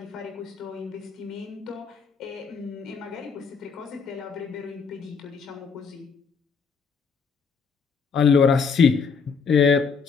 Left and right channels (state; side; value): quieter; right; 5.6 dB